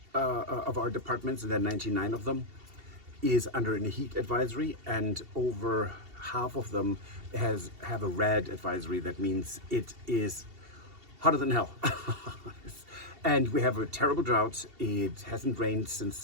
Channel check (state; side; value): late; left; 2.7 ms